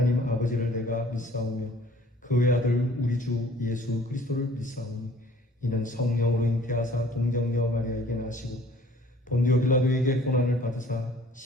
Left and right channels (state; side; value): normal; both; correlation 0.53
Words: 아버지를 내가 믿사오며 그 외아들 우리 주 예수 그리스도를 믿사오니 이는 성령으로 잉태하사 동정녀 마리아에게 나시고 본디오 빌라도에게 고난을 받으사